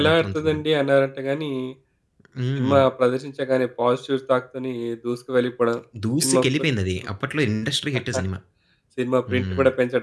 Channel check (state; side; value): identical; both; correlation 1.00